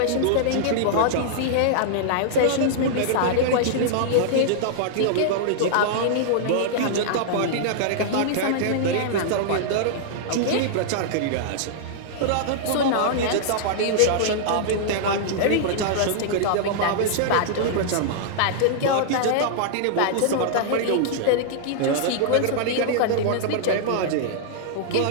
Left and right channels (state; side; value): different; both; correlation -0.01